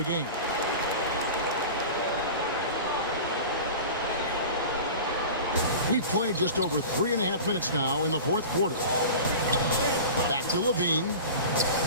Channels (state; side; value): inverted; both; correlation -0.34